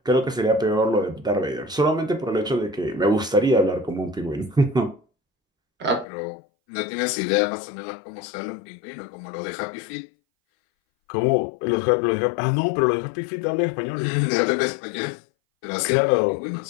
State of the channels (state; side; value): drops out; right; at 6.1 s